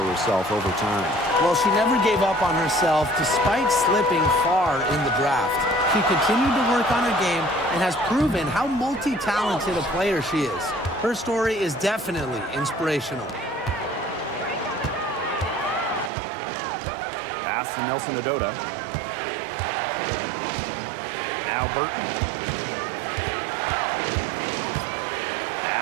herself over time. Well, she never gave up on herself despite slipping far in the draft. She continued to work on her game and has proven how multi-talented a player she is. Her story is definitely inspirational. Pass to Nelson Adota. Now Burton.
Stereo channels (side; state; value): left; drops out; at 16.1 s